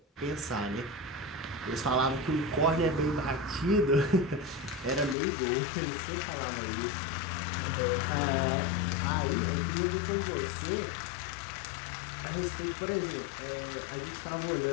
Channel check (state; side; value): drops out; right; at 5.2 s